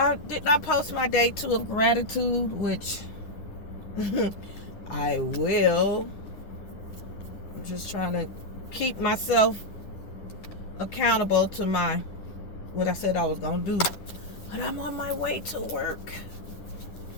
did not post my day 2 of gratitude, which I will. I'm just trying to keep myself accountable to what I said I was going to do. But I'm on my way to work.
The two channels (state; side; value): late; right; 10 ms